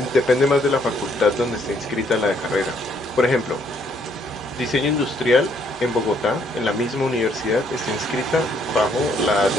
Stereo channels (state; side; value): normal; both; correlation 0.68